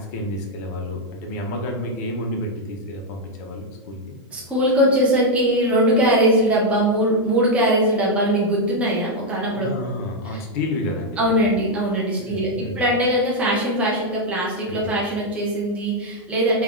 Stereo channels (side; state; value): both; normal; correlation 0.01